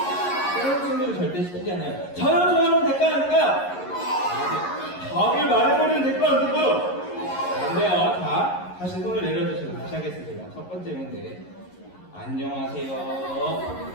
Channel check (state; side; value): late; right; 11 ms